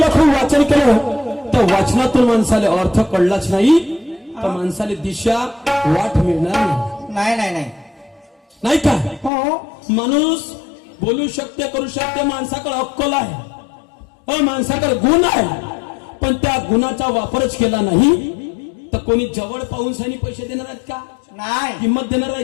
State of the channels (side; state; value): right; drops out; at 9.3 s